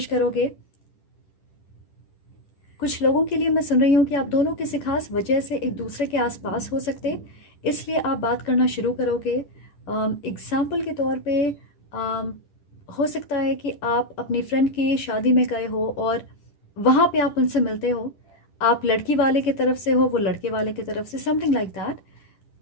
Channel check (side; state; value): right; late; 10 ms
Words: करोगे। कुछ लोगों के लिए मैं सुन रही हूँ कि आप दोनों किसी खास वजह से एक दूसरे के आसपास हो सकते, इसलिए आप बात करना शुरू करोगे। एग्ज़ाम्पल के तौर पे हो सकता है कि आप अपनी फ्रेंड की शादी में गए हो और वहाँ पे आप उनसे मिलते हो। आप लड़की वाले की तरफ से हो, वो लड़के वाले की तरफ से, समथिंग लाइक दैट।